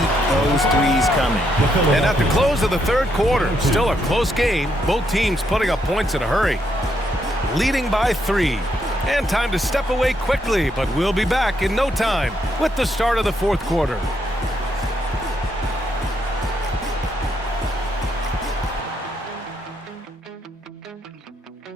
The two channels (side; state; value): both; normal; correlation 0.77